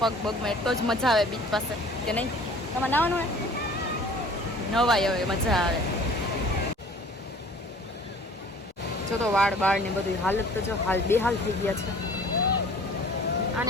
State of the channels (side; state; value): both; normal; correlation 0.49